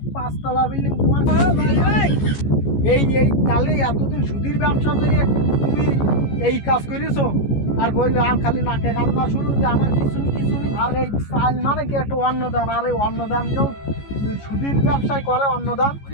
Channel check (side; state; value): right; late; 14 ms